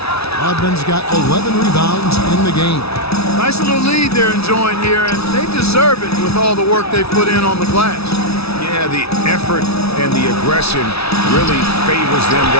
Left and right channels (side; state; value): right; late; 0.78 ms